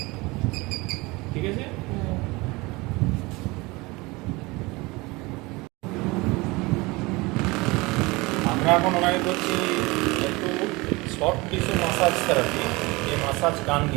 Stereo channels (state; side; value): quieter; left; 23.6 dB